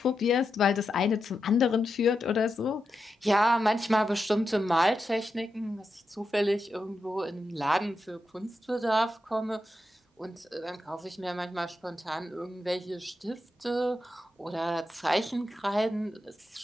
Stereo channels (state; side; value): normal; both; correlation 0.87